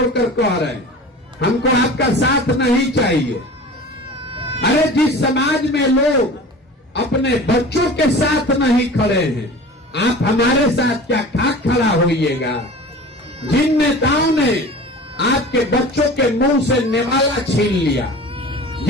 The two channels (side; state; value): both; normal; correlation 0.38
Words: कह रहे हैं, हमको आपका साथ नहीं चाहिए। अरे जिस समाज में लोग अपने बच्चों के साथ नहीं खड़े हैं, आप हमारे साथ क्या खाक खड़ा होइएगा। जिन नेताओं ने आपके बच्चों के मुंह से निवाला छीन लिया,